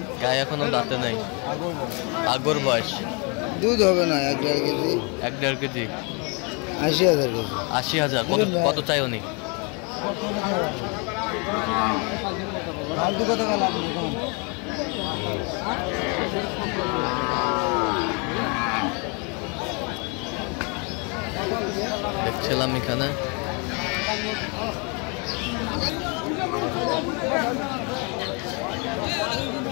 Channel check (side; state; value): right; quieter; 33.1 dB